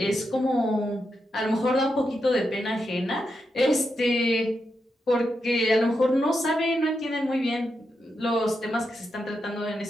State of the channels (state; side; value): normal; both; correlation 0.85